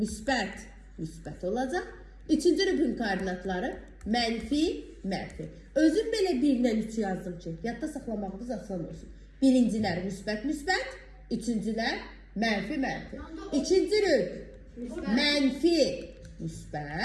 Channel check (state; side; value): identical; both; correlation 1.00